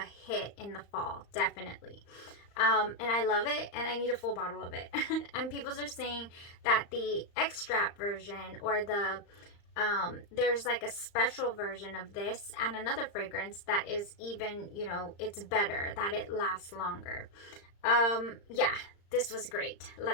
hit in the fall, definitely. And I love it, and I need a full bottle of it. And people are saying that the extract version, or there's like a special version of this and another fragrance that is even, you know, it's better, that it lasts longer. Yeah, this was great.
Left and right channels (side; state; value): right; late; 35 ms